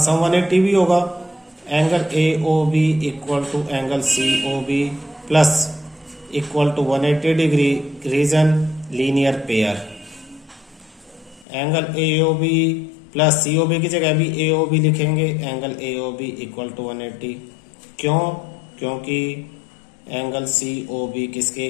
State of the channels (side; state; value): right; drops out; at 11.5 s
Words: सम 180 भी होगा। Angle AOB equal to angle COB plus equal to 180 degree, reason linear pair. Angle AOB plus COB की जगह भी AOB लिखेंगे, एंगल AOB इक्वल टू 180। क्यों? क्योंकि एंगल COB किसके